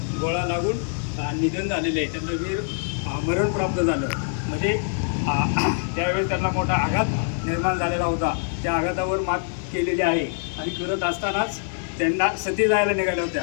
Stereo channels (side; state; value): right; silent; 62 dB below the other